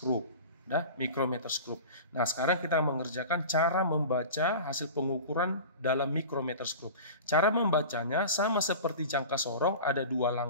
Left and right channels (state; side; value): inverted; both; correlation -0.35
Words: Nah, micrometer screw. Nah, sekarang kita mengerjakan cara membaca hasil pengukuran dalam micrometer screw. Cara membacanya sama seperti jangka sorong, ada dua